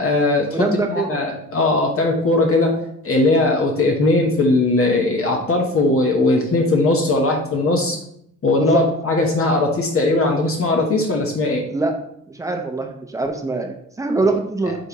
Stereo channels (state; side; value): normal; both; correlation 0.39